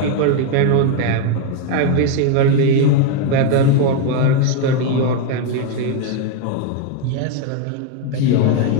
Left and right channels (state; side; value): different; both; correlation 0.01